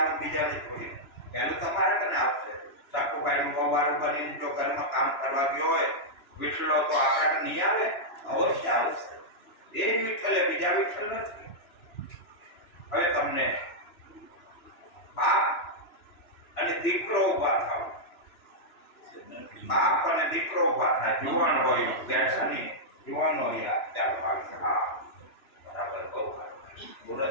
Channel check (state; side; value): late; right; 3.0 ms